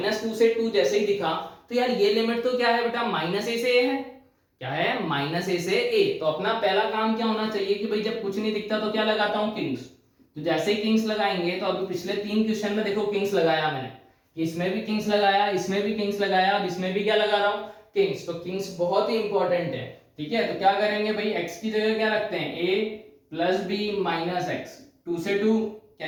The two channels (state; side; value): identical; both; correlation 1.00